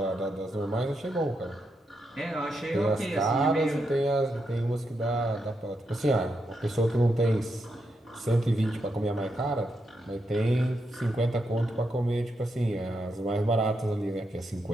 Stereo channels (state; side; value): normal; both; correlation 0.83